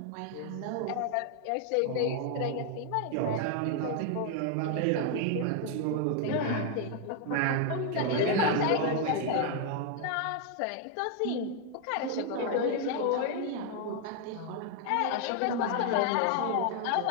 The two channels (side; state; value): both; different; correlation 0.00